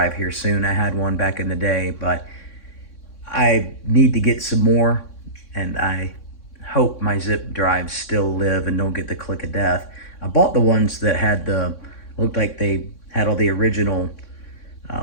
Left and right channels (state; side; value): late; right; 3.6 ms